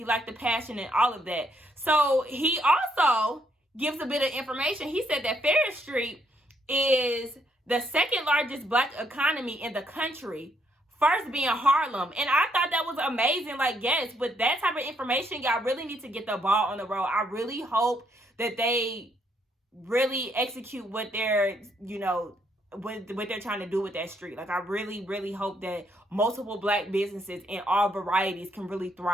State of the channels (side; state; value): both; normal; correlation 0.73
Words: liked the passion and all of that. So he also gives a bit of information. He said that Ferris Street is the second largest Black economy in the country, first being Harlem. And I thought that was amazing. Yes, with that type of information, y'all really need to get the ball on the road. I really hope that they really execute what they're, what they're trying to do with that street. I really, really hope that multiple Black businesses in all varieties can really